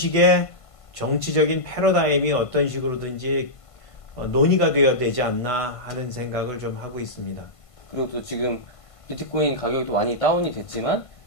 정치적인 패러다임이 어떤 식으로든지 논의가 되어야 되지 않나 하는 생각을 좀 하고 있습니다. 그리고 또 지금 비트코인 가격이 또 많이 다운이 됐지만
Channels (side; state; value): right; late; 1.5 ms